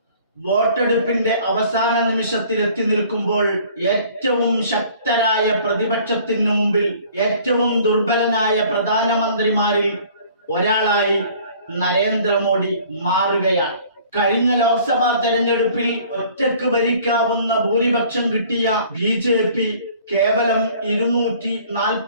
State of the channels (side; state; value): both; inverted; correlation -0.53